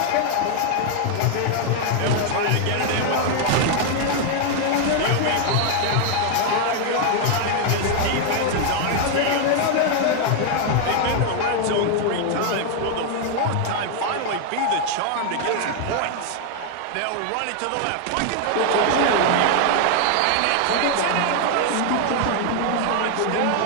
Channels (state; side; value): different; both; correlation 0.00